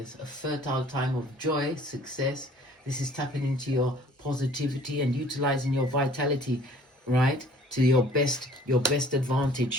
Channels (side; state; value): both; normal; correlation 0.53